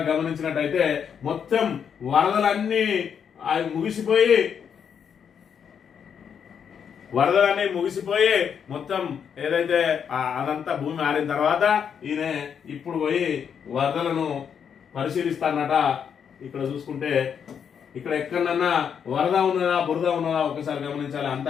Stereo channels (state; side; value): quieter; right; 7.5 dB